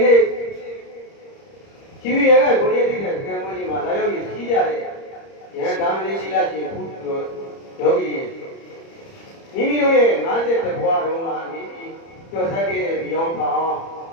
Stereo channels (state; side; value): late; right; 30 ms